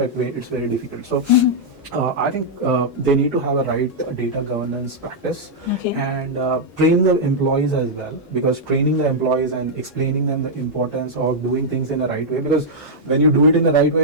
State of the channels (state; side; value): normal; both; correlation -0.06